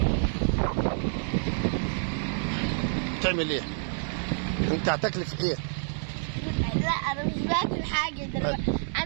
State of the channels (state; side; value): silent; left; digital silence